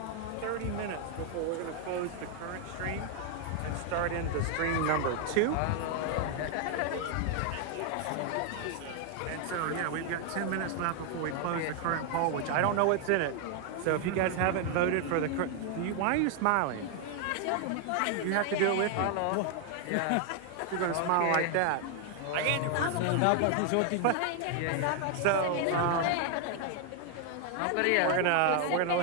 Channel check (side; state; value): both; different; correlation 0.00